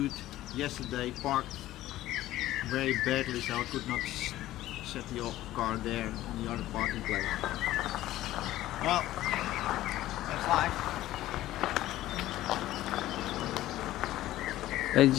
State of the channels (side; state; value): right; quieter; 15.0 dB